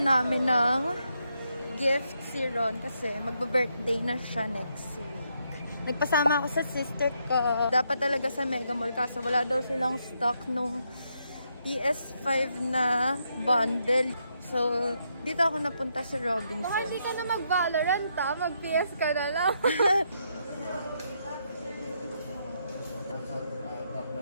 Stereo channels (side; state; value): both; inverted; correlation -0.78